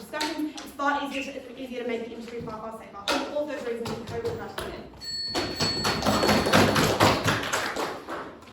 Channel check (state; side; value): identical; both; correlation 1.00